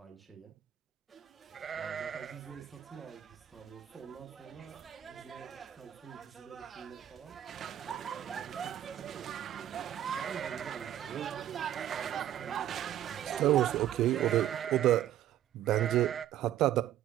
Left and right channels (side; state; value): left; quieter; 11.7 dB